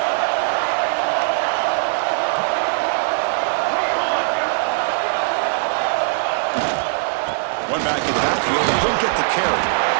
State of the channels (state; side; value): silent; left; 66 dB below the other